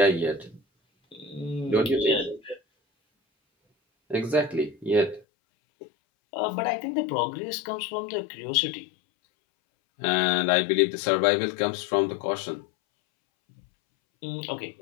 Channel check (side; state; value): right; drops out; at 5.2 s